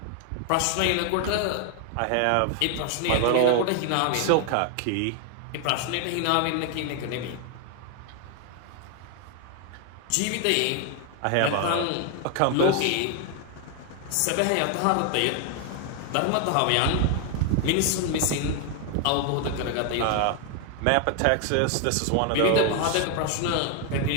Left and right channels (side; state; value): both; different; correlation 0.01